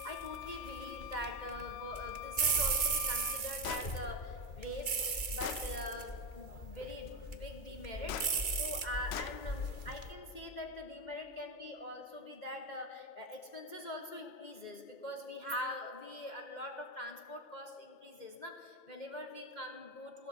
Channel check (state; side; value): late; right; 2.3 ms